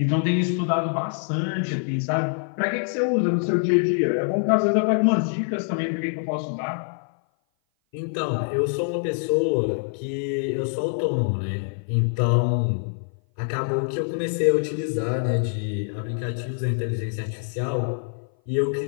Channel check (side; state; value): right; silent; 57 dB below the other